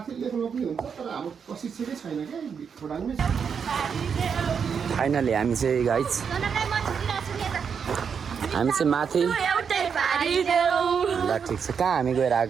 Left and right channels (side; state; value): left; quieter; 6.7 dB